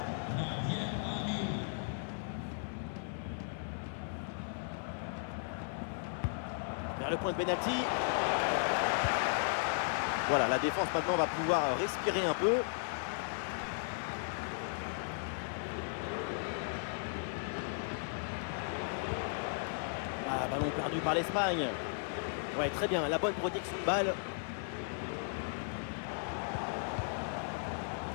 Vers le point de pénalty. Voilà, la défense maintenant va pouvoir respirer un peu. Ballon perdu par l'Espagne. Ouais, très bien, la bonne protection de balle.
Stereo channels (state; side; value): silent; right; 54 dB below the other